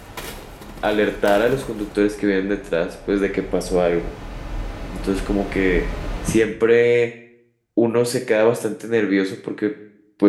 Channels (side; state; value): both; identical; correlation 1.00